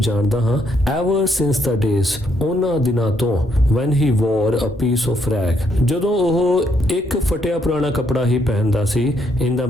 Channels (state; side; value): normal; both; correlation 0.73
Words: ਹਾਂ, ever since the days, ਉਹਨਾਂ ਦਿਨਾਂ ਤੋਂ, when he wore a piece of rag, ਜਦੋਂ ਉਹ ਇੱਕ ਫਟਿਆ ਪੁਰਾਣਾ ਕੱਪੜਾ ਹੀ ਪਹਿਨਦਾ ਸੀ, in the